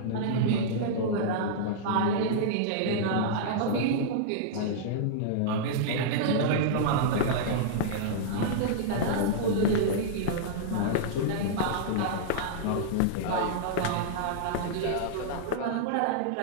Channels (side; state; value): both; different; correlation -0.02